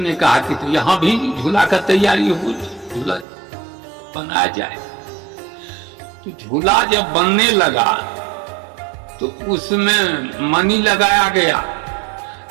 कहा कि तो यहाँ भी झूला का तैयारी हो, झूला बनाया जाए। तो झूला जब बनने लगा तो उसमें मणि लगाया गया,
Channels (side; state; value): left; drops out; at 3.2 s